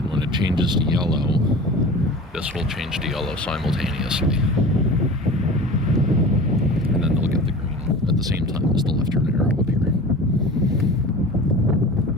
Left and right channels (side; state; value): both; normal; correlation 0.37